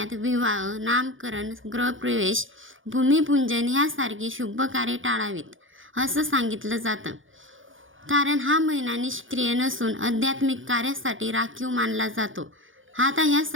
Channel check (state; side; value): late; left; 0.58 ms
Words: विवाह, नामकरण, गृहप्रवेश, भूमिपूजन ह्यासारखी शुभ कार्ये टाळावीत असं सांगितलं जातं. कारण हा महिना निष्क्रिय नसून आध्यात्मिक कार्यासाठी राखीव मानला जातो. आता ह्या